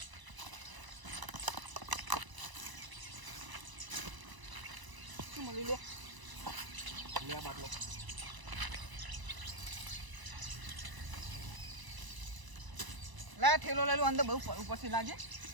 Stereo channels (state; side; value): late; left; 1.0 ms